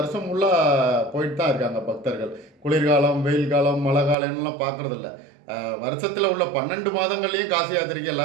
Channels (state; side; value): drops out; left; at 4.2 s